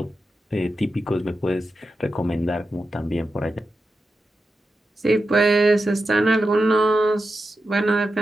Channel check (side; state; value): both; normal; correlation 0.90